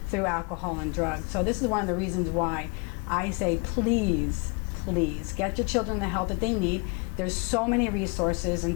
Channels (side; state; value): right; quieter; 32.3 dB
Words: through alcohol and drugs. So this is one of the reasons why I say, please, please get your children the help that they need. There's so many resources,